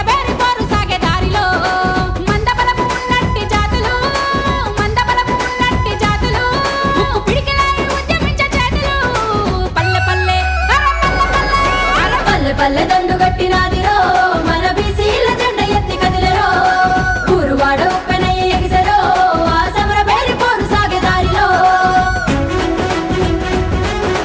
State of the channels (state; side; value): identical; both; correlation 1.00